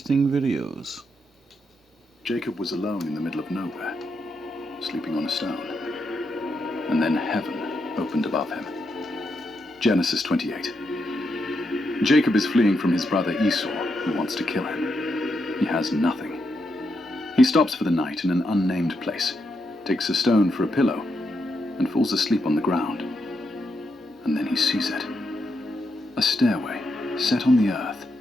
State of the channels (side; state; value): both; normal; correlation 0.82